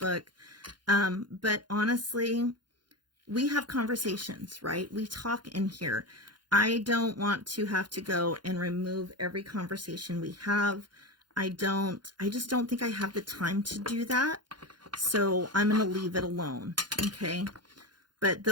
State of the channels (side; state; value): left; late; 0.71 ms